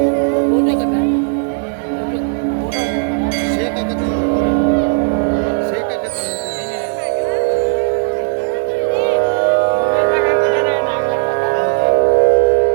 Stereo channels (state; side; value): silent; left; digital silence